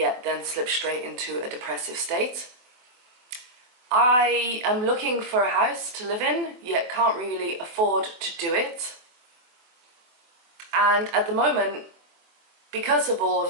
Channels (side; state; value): left; late; 24 ms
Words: then slipped straight into a depressive state. I am looking for a house to live in, yet can't really afford to do it. And at the moment, because of all